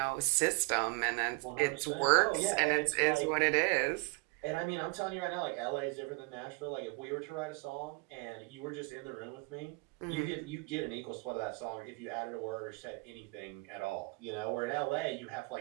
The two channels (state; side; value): quieter; left; 29.4 dB